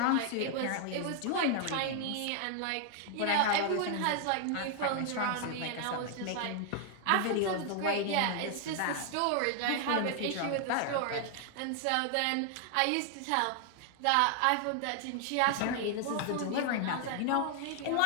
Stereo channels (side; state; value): both; different; correlation 0.00